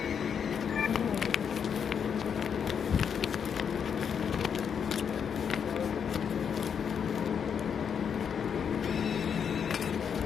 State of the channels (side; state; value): right; quieter; 7.3 dB